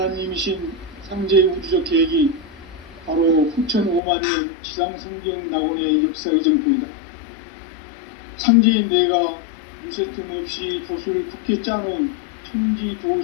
상제의 우주적 계획이 바로 후천 5만년 지상성경 낙원의 역사 이정표이다. 상제인 내가 무쇠틈 없이 돛을 굳게 짜놓은 천지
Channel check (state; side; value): drops out; right; at 4.0 s